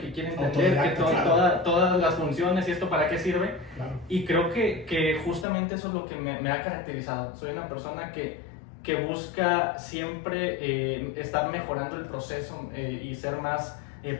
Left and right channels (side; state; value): right; drops out; at 5.5 s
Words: quiere entender que todas las funciones y esto para qué sirve. Claro. Y creo que justamente eso es lo que me ha caracterizado. Soy una persona que busca siempre estar mejorando el proceso y ser más